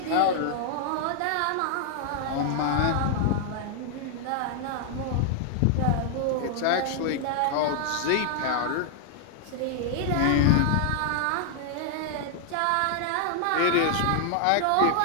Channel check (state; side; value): different; both; correlation 0.00